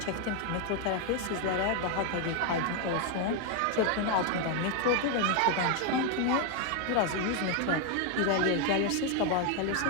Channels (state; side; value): different; both; correlation 0.01